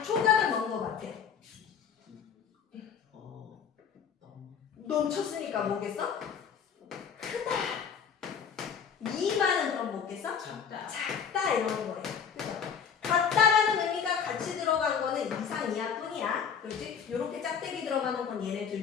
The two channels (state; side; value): quieter; right; 7.0 dB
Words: 초가는 뭔 거 같아? 넘쳤으니까 뭐겠어? 크다. 미만은 그럼 뭐겠어? 작다. 작다 이러는 거예요. 그죠? 같다라는 의미가 같이 들어간 거는 이상 이하뿐이야. 그렇지? 요렇게 짝대기 들어가는 건 얘네